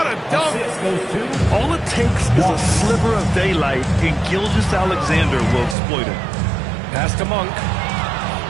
a dunk. All it takes is a sliver of daylight, and Gilgeous-Alexander will exploit it. Pass to Monk.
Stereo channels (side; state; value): left; drops out; at 5.8 s